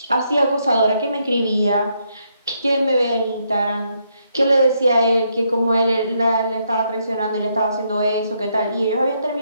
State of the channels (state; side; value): inverted; both; correlation -0.76